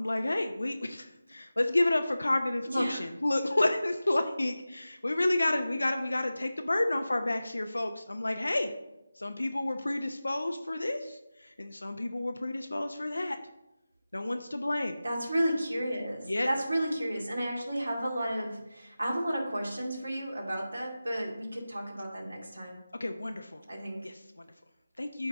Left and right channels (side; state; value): both; inverted; correlation -0.96